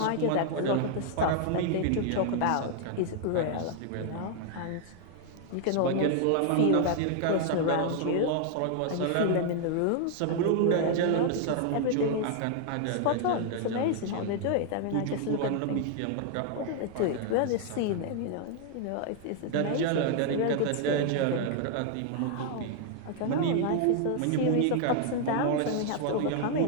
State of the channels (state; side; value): different; both; correlation 0.00